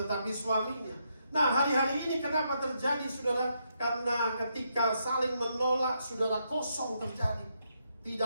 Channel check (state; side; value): inverted; both; correlation -0.79